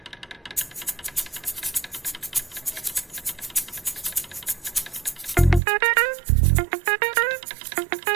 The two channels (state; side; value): drops out; left; at 5.6 s